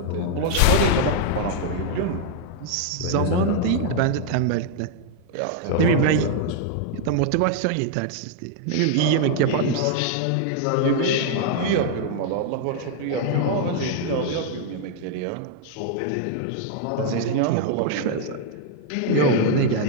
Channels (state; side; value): different; both; correlation 0.00